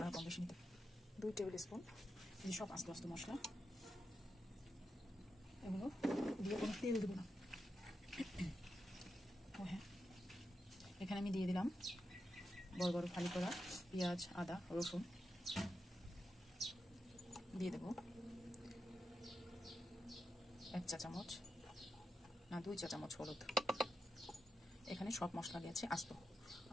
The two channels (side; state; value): both; normal; correlation 0.88